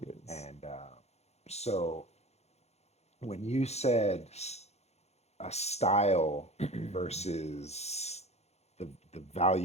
is. And so when you said a style versus the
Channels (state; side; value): late; right; 0.31 ms